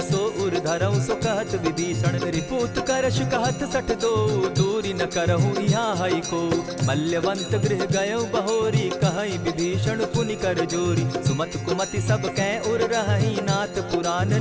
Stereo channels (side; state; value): both; identical; correlation 1.00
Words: सो उर धरऊं सो कहत विभीषण। रिपुत करश कहत सठ दो, दूरी न करहूँ यहाँ हई को। मल्यवंत गृह गयो बहोरी, कहई विभीषण पुनि कर जोरी। सुमत कुमति सब कै उर रहई, नाथ पुराण